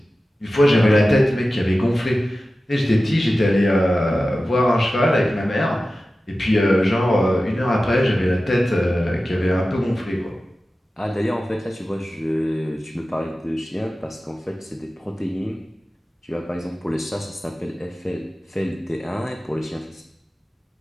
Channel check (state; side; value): normal; both; correlation 0.95